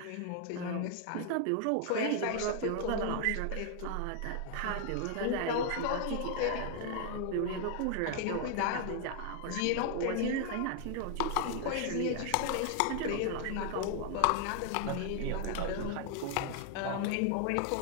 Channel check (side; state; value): both; different; correlation 0.00